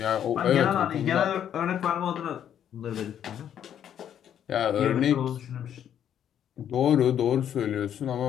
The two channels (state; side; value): quieter; right; 9.7 dB